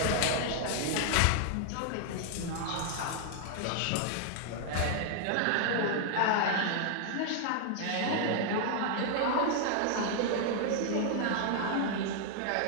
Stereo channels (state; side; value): different; both; correlation -0.01